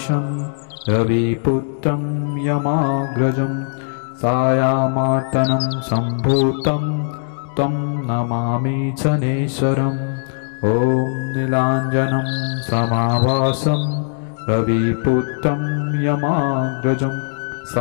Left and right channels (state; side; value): silent; right; digital silence